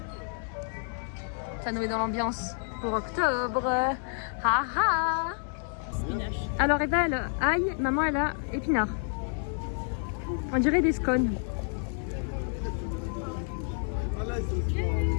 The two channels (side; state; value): right; silent; 58 dB below the other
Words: Ça nous met dans l'ambiance pour octobre. Ha ha. Alors Eva elle ail, maman elle a épinards. On dirait des scones.